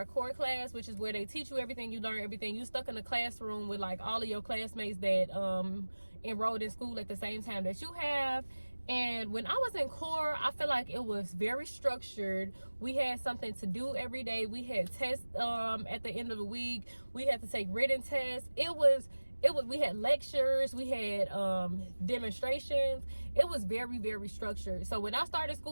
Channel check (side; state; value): both; inverted; correlation -1.00